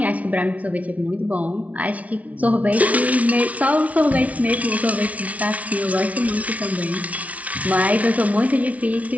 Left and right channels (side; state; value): left; late; 0.068 ms